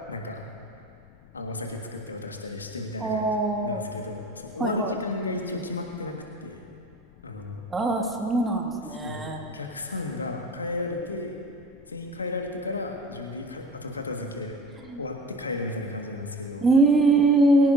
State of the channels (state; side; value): noise; left; rumble, 24 dB below the sound